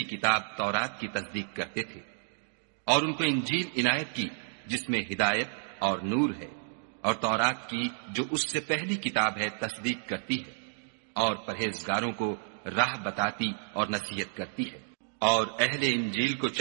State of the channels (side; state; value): left; silent; digital silence